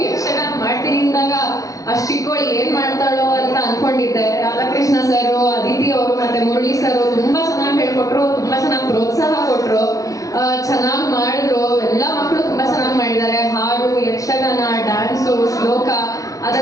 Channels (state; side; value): late; right; 0.17 ms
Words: ಯಕ್ಷಗಾನ ಮಾಡ್ತೀನಿ ಅಂದಾಗ ಅಷ್ಟು ಚಿಕ್ಕವಳು ಏನ್ ಮಾಡ್ತಾಳೋ ಅಂತ ಅನ್ಕೊಂಡಿದ್ದೆ. ರಾಧಾಕೃಷ್ಣ ಸರ್, ಅದಿತಿ ಅವರು ಮತ್ತೆ ಮುರಳಿ ಸರ್ ತುಂಬಾ ಚೆನ್ನಾಗಿ ಹೇಳ್ಕೊಟ್ರು, ತುಂಬಾ ಚೆನ್ನಾಗಿ ಪ್ರೋತ್ಸಾಹ ಕೊಟ್ರು, ಚೆನ್ನಾಗಿ ಮಾಡಿದ್ರು. ಎಲ್ಲ ಮಕ್ಕಳು ತುಂಬಾ ಚೆನ್ನಾಗಿ ಮಾಡಿದ್ದಾರೆ. ಹಾಡು, ಯಕ್ಷಗಾನ, ಡ್ಯಾನ್ಸು, ಶ್ಲೋಕ,